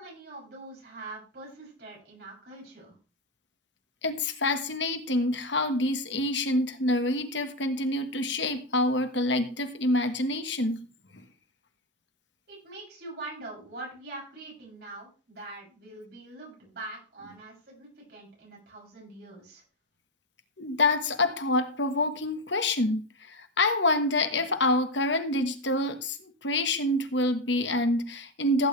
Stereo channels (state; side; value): normal; both; correlation 0.10